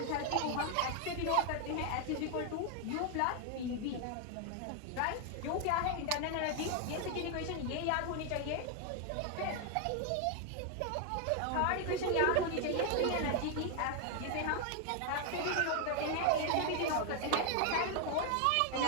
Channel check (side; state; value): both; different; correlation 0.00